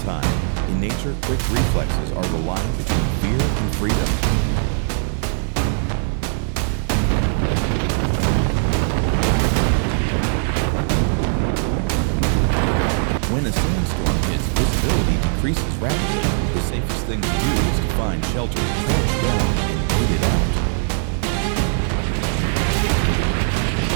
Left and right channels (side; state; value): left; silent; digital silence